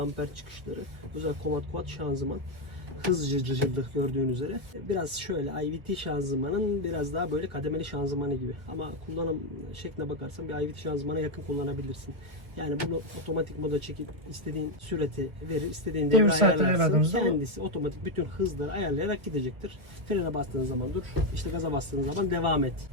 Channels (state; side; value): late; left; 1.6 ms